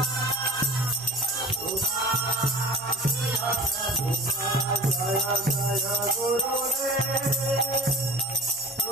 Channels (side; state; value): both; normal; correlation 0.40